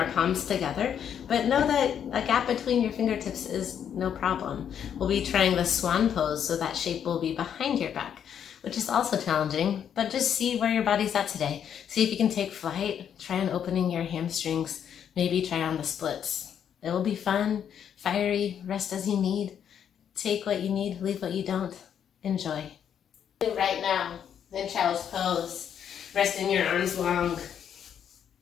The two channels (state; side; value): quieter; right; 8.7 dB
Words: palms together, but know that a gap between your fingertips is no problem. We'll be trying the swan pose, so that shape will be behind your back, which is also challenging, but just see where your body's at today. See if you can take flight, try on opening your hamstrings, maybe try on the splits. It will be fun, fiery, rest as you need. Take what you need, leave what you don't. Enjoy. Right now, in child's pose, resting your arms long.